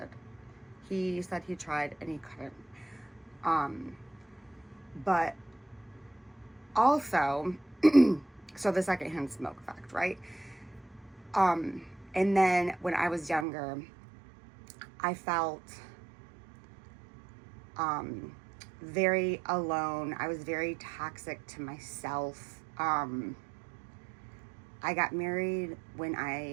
He said he tried and he couldn't. But also, so the secondhand smoke effect, right? And then when I was younger, I felt very alone. I was very toxic to myself. I got married when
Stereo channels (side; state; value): left; drops out; at 13.5 s